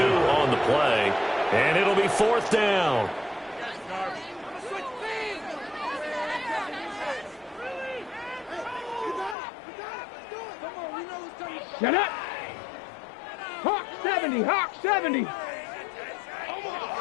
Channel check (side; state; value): right; drops out; at 9.3 s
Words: on the play. And it'll be 4th down. Shut up. Hawk 70, Hawk 70.